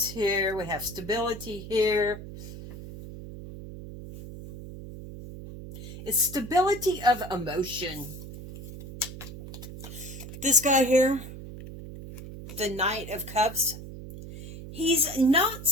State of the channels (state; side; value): noise; right; hum, 12 dB below the sound